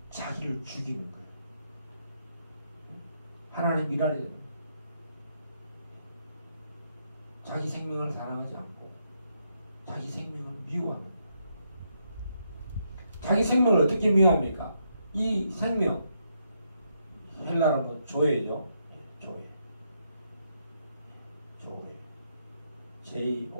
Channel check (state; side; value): inverted; both; correlation -0.78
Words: 자기를 죽이는 거예요. 하나님 일하려 자기 생명을 사랑하지 않고 자기 생명을 미워하는 거예요. 자기 생명을 어떻게 미워합니까? 이 생명 헬라로 뭐 조예죠. 조예. 조예.